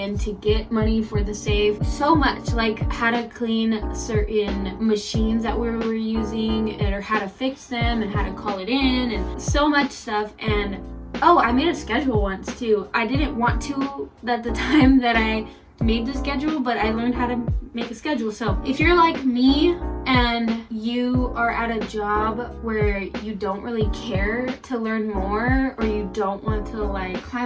to get money for the safe. So much, like how to clean certain machines that we were using, or how to fix them, and how to call it in, and so much stuff. And oh, I made a schedule once too. I didn't want to at the time that I made the schedule, but I learned how to make a schedule. So if you're like me and you are at a job where you don't really care to learn more, or you don't want to like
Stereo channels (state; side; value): identical; both; correlation 1.00